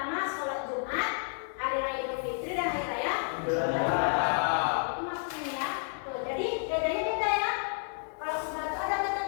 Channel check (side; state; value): right; silent; 57 dB below the other